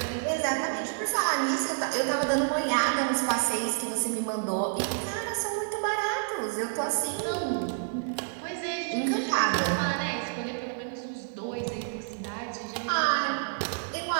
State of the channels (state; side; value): silent; left; digital silence